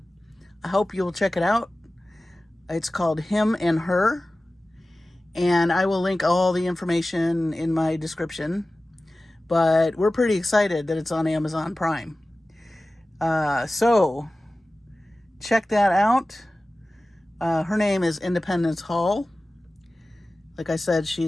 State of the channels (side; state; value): both; normal; correlation 0.96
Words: I hope you'll check it out. It's called Him and Her, and I will link all the information in my description, but we're pretty excited that it's on Amazon Prime. So check that out. Her name is Independence Hall. Like I said,